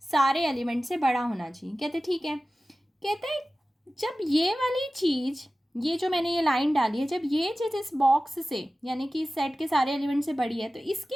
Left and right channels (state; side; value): normal; both; correlation 0.96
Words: सारे एलिमेंट से बड़ा होना चाहिए। कहते ठीक है। कहते हैं जब ये वाली चीज़, ये जो मैंने ये लाइन डाली है, जब ये चीज़ इस बॉक्स से यानी कि इस सेट के सारे एलिमेंट से बड़ी है, तो